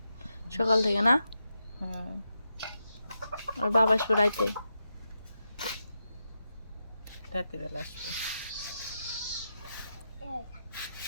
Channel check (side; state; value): both; inverted; correlation -0.86